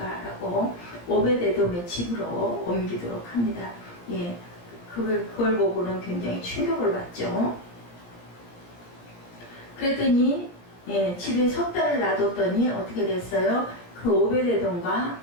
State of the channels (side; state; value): right; late; 17 ms